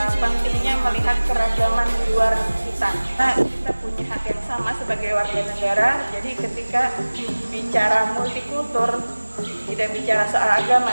pentingnya melihat keragaman di luar kita. Kita punya hak yang sama sebagai warga negara. Jadi ketika bicara multikultur, tidak bicara soal agama,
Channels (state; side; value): inverted; both; correlation -1.00